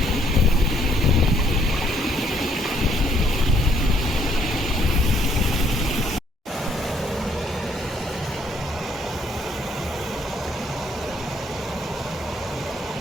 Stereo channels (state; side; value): normal; both; correlation 0.67